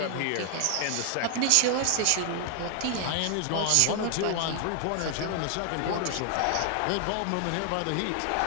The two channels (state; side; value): different; both; correlation 0.00